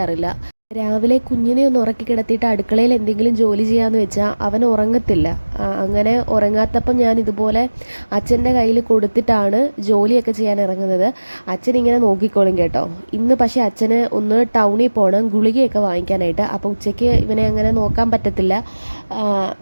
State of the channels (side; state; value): both; inverted; correlation -1.00